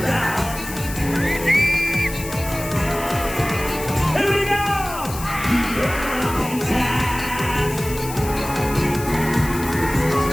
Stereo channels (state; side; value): noise; left; hiss, 11 dB below the sound